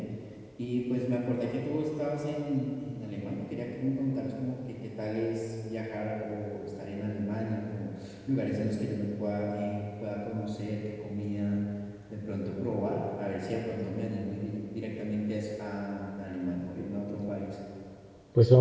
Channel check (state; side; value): identical; both; correlation 1.00